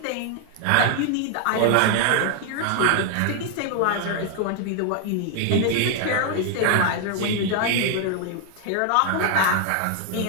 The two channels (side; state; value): both; different; correlation 0.00